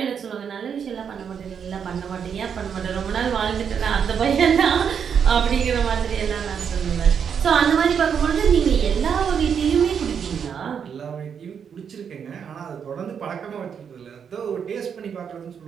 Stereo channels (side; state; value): left; quieter; 7.3 dB